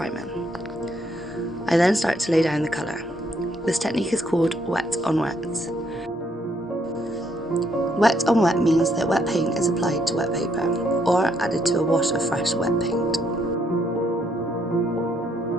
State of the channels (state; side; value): normal; both; correlation 0.72